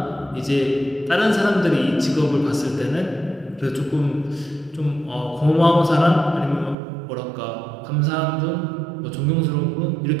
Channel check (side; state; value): left; drops out; at 6.8 s